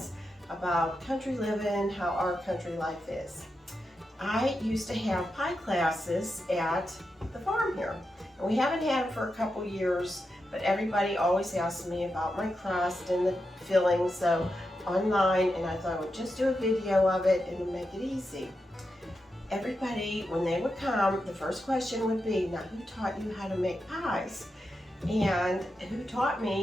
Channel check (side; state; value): both; normal; correlation 0.88